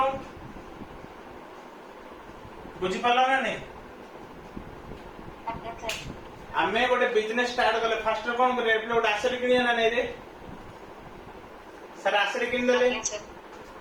बुझी पाला ना नहीं Yes, sir. आमे गोटे बिजनेस स्टार्ट कले फास्ट कोन करे एप्ले गोटे एसेट किनिया ना नै रे सर एसेट किन देले Yes, sir.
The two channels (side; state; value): both; identical; correlation 1.00